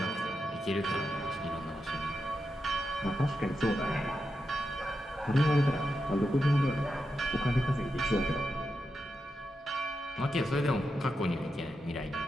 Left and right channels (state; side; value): normal; both; correlation 0.87